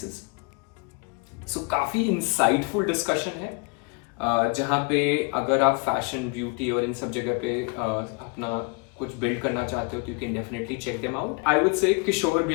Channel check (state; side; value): quieter; right; 32.3 dB